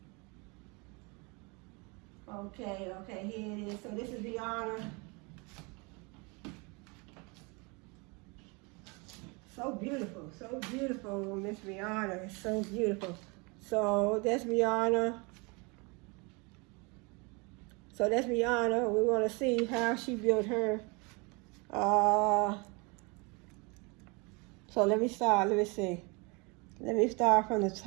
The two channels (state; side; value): quieter; left; 29.4 dB